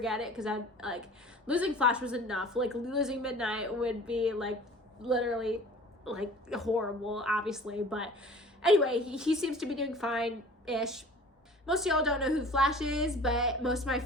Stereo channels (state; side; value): normal; both; correlation 0.45